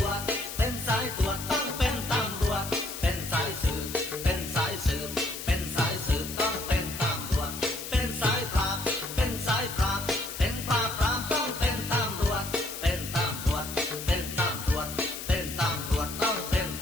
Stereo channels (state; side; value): noise; left; hiss, 8 dB below the sound